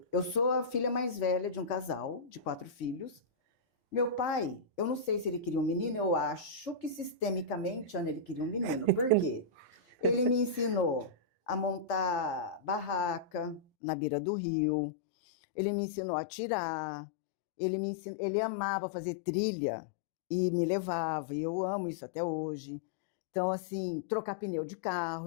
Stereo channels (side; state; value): right; drops out; at 13.6 s